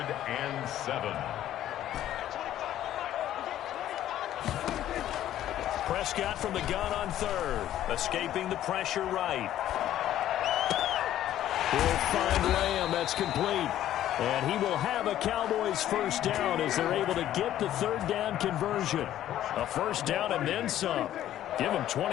and 7. Prescott from the gun on 3rd, escaping the pressure right. He'll find Lamb. That's complete. And he will have a Cowboys first down as they're able to get the 3rd down conversion. A first down and then some. Give him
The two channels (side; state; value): right; quieter; 12.3 dB